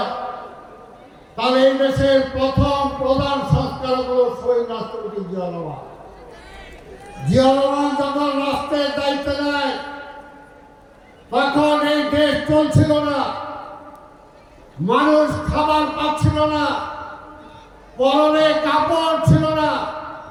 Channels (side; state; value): both; identical; correlation 1.00